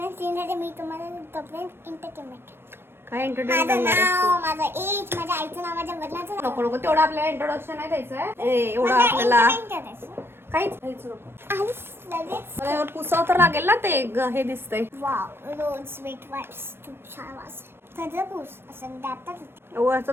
क्लीन राहते, मी तुम्हाला तोपर्यंत एंटरटेनमेंट. काय माझं एंटरटेनमेंट? नाव, माझं एज, माझ्या आईचं नाव, माझ्या वडिलांचं नाव. नको नको, तेवढं आपल्याला इंट्रोडक्शन नाही द्यायचंय. एवढं आपल्याला काहीच नको. मला पुसाव तर लागेल ना, ते हे दिसतंय. वाव, रोज स्वीट वाईट्स खूप छान वास. सगळं पूस असं दातात.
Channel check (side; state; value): left; late; 0.11 ms